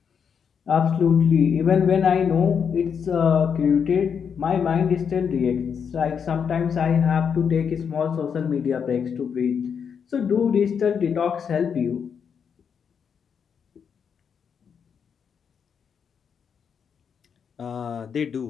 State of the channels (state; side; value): quieter; right; 7.0 dB